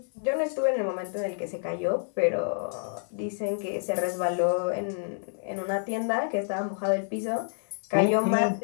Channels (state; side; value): silent; right; digital silence